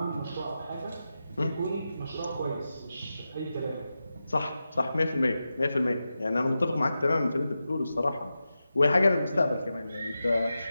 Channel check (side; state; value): both; inverted; correlation -0.91